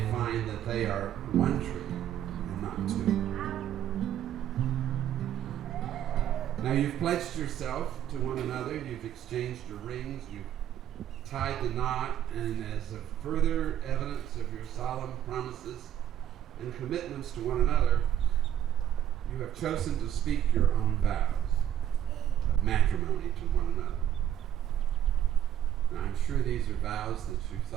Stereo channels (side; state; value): left; quieter; 10.9 dB